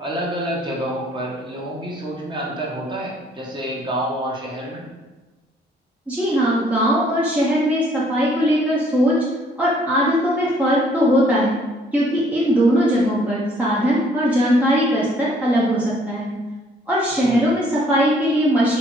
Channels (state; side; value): normal; both; correlation 0.62